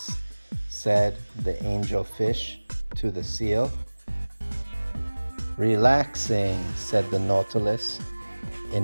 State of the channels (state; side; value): inverted; both; correlation -1.00